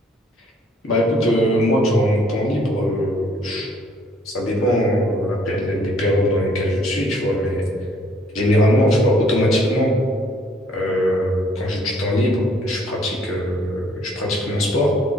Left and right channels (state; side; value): normal; both; correlation 0.62